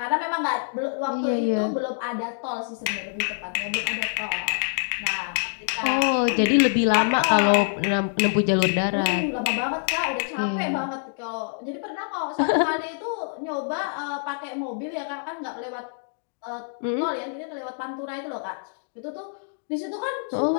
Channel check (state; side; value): silent; right; digital silence